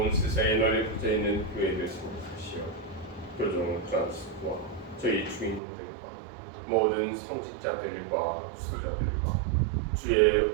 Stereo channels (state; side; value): drops out; left; at 5.6 s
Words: 세상에 널리 퍼져 있는 교회를 생각하시어 교종 프란스와 저희 주인님들과 모든 성직자들과 수자들과 주의